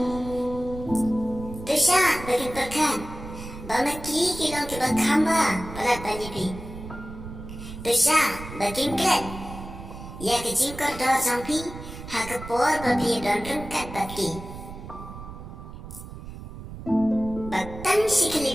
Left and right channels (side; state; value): right; noise; rumble, 12 dB below the sound